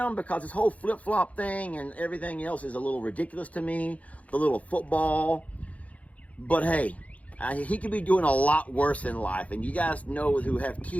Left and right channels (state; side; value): late; right; 0.068 ms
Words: because this whole flip-flop thing and everything else is a little ridiculous to me, the little football, but hey, he could be doing a lot worse in life, and you guys know who have